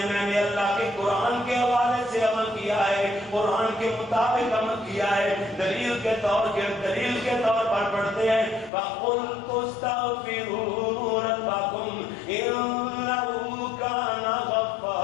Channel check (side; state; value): right; drops out; at 8.7 s